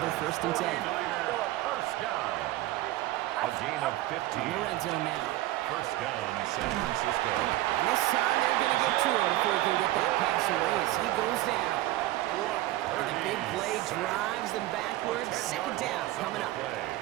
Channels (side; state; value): left; quieter; 16.5 dB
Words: 1st and 10. 1st down. A gain of 15. In the red zone now. 1st down, San Francisco. And this time they're going to get to him before he can get that pass away as he goes down. And the big play drives them backwards. 2nd down coming up.